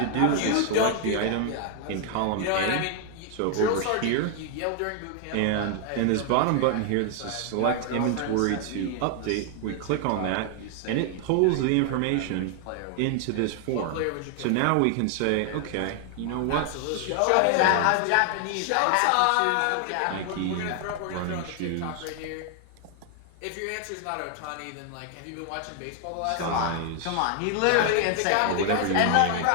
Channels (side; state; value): both; different; correlation 0.00